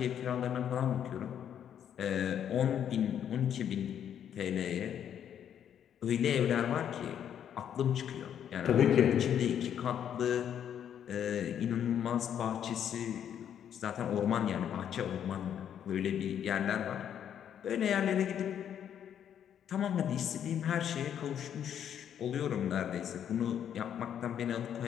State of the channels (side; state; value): right; quieter; 9.3 dB